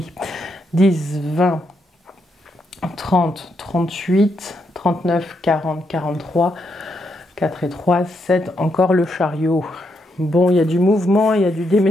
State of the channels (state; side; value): normal; both; correlation 0.79